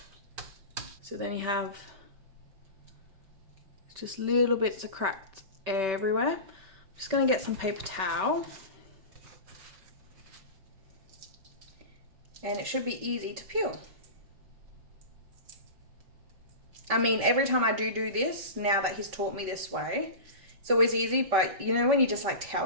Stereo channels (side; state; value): left; late; 5.2 ms